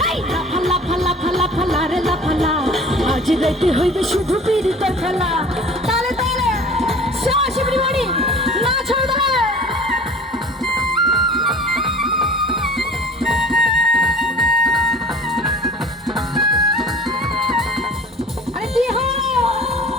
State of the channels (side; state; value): both; normal; correlation 0.44